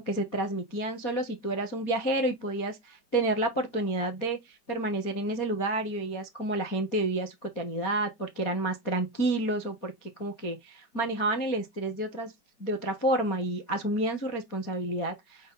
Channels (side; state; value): right; late; 4.3 ms